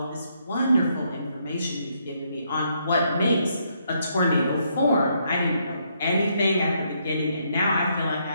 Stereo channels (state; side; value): inverted; both; correlation -0.74